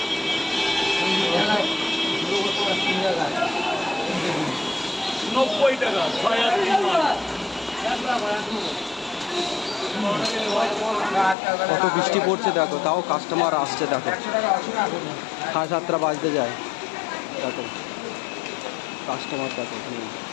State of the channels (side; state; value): right; drops out; at 11.4 s